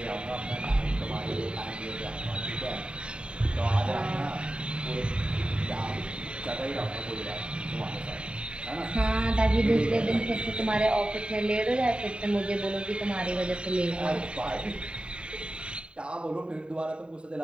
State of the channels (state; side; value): late; left; 0.053 ms